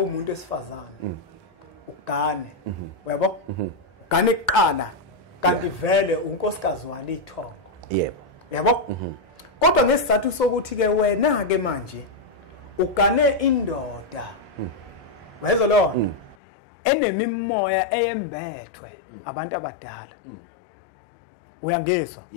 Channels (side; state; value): right; drops out; at 16.4 s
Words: esifazane ugane uyabo ugane ekuqala kanti vele unkosikazi walithongo yabo kodwa ngesizathu sokuthi ke wena ke manje ugane indoda wezwa lo enemimoya eyembethwe abantu abadala uyangezwa